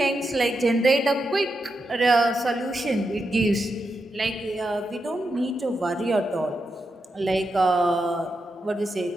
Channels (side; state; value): both; normal; correlation 0.86